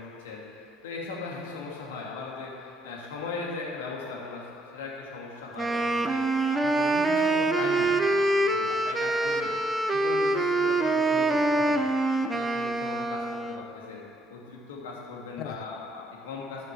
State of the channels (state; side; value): normal; both; correlation 0.72